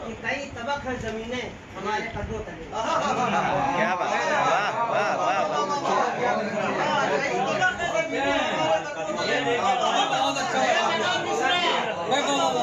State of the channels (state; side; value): identical; both; correlation 1.00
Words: कि कई तबक है जमीनें हमारे कदमों तले। क्या बात है, वाह वाह वाह